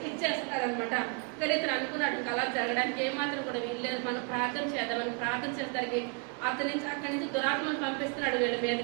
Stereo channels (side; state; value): left; quieter; 35.5 dB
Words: ఇచ్చేస్తారనమాట. కానీ ఇతను అనుకున్నాడు అలా జరగడానికి ఏమాత్రం కూడా వీల్లేదు, మనం ప్రార్థన చేద్దామని ప్రార్థన చేసేసరికి అక్కడి నుంచి దురాత్మను పంపిస్తున్నాడు. వీళ్ళ